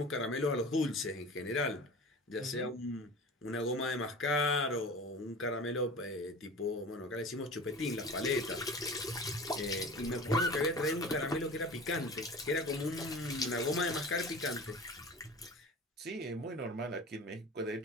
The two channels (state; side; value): normal; both; correlation 0.37